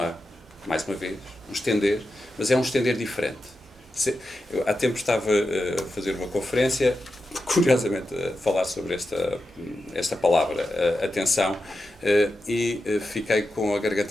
mais uma vez, um estender, mas é um estender diferente. Eu, há tempo estava a fazer uma conferência, curiosamente a falar sobre esta palavra, atenção, e fiquei com a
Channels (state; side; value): normal; both; correlation 0.90